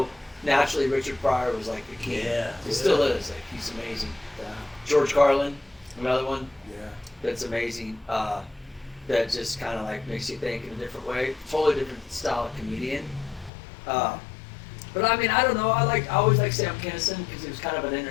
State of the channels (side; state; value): right; drops out; at 13.5 s